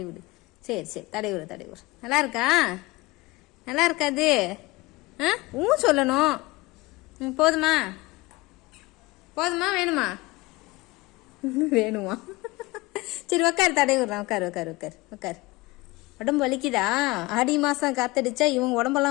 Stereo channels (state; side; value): quieter; right; 21.9 dB